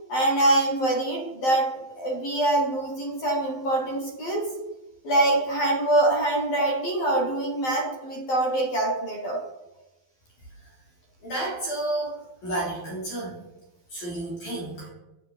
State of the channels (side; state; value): right; late; 12 ms